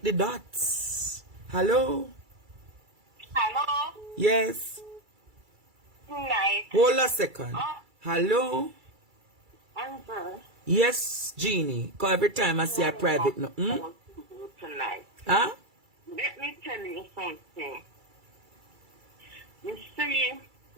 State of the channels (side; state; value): left; late; 2.3 ms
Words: the dots. Hello? Hello? Yes. Night. Hold a second. Hello? Amber. Yes, Jeannie. Because every time I see a private no. Tonight. Huh? Let me tell you something. You see,